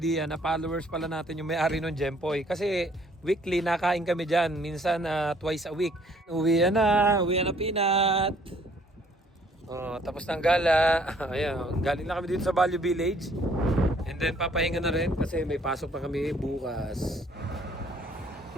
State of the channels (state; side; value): normal; both; correlation 0.61